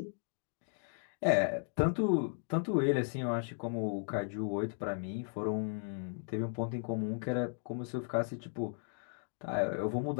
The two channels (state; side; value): silent; right; digital silence